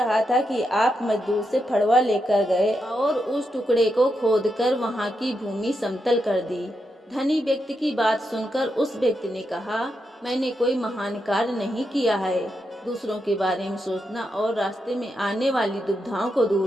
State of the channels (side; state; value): both; normal; correlation 0.84